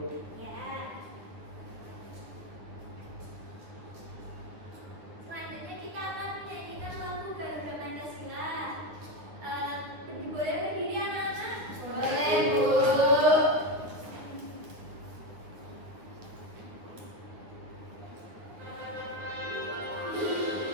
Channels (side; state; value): left; late; 9.4 ms